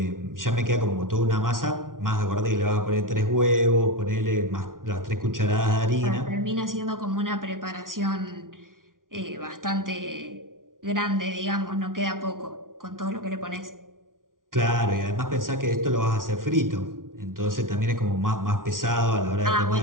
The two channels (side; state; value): left; late; 0.89 ms